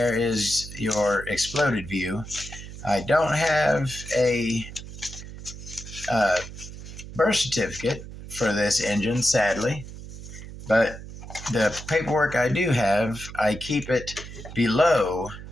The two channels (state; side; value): noise; right; hum, 13 dB below the sound